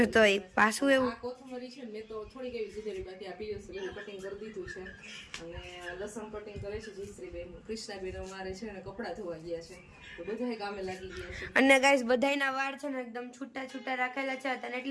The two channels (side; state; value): both; identical; correlation 1.00